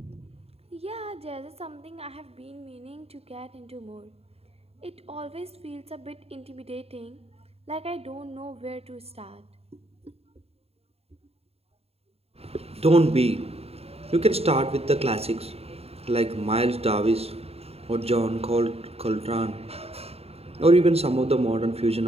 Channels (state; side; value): late; left; 0.29 ms